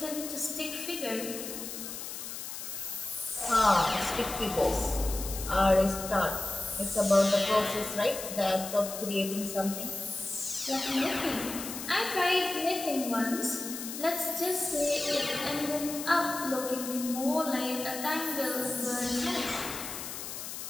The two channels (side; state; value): left; noise; hiss, 8 dB below the sound